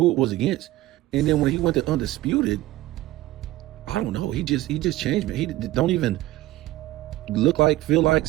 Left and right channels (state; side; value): quieter; left; 16.7 dB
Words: it was against. And then when he went to Undisputed, I don't know. He just changed, man. He don't even look like, feel like,